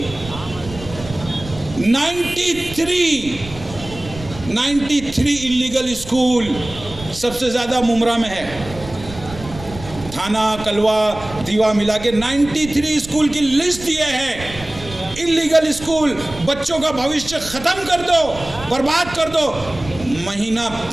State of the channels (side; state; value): right; noise; rumble, 14 dB below the sound